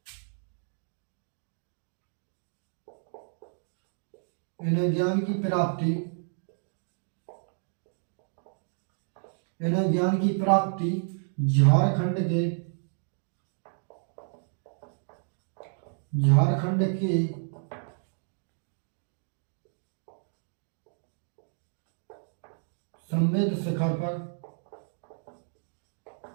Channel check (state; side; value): silent; left; digital silence